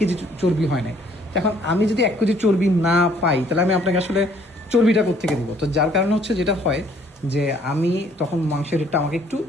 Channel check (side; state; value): both; normal; correlation 0.61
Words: চর্বি হয় নাই। এখন আমি যদি 1 কেজি চর্বি না পাই, তাহলে আমি আপনাকে আসলে চর্বিটা কোত্থেকে দিব? তো যার কারণে যেটা হয় যে আমি তখন মাংসের রেটটা আমাকে একটু